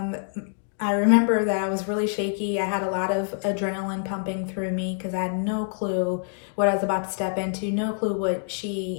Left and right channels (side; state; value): right; silent; digital silence